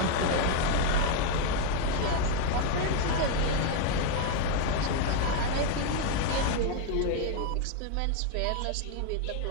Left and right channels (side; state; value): both; different; correlation 0.01